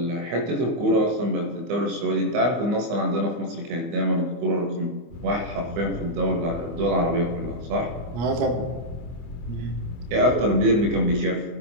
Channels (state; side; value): late; left; 24 ms